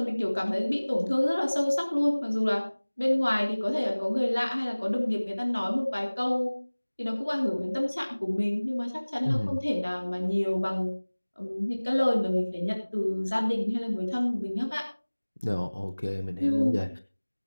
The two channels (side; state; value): both; inverted; correlation -1.00